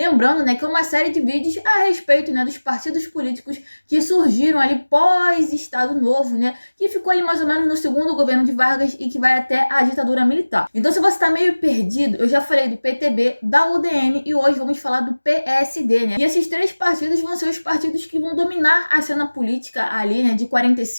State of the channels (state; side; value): inverted; both; correlation -1.00